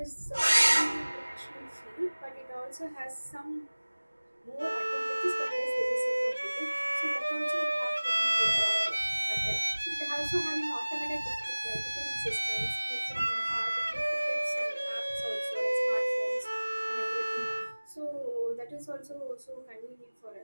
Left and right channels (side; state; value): both; inverted; correlation -1.00